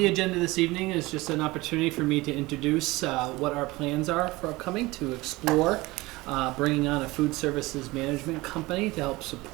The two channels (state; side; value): quieter; left; 21.0 dB